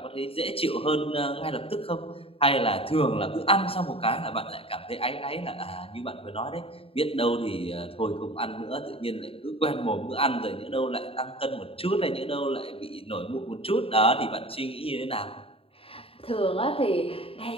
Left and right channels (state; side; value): late; right; 0.27 ms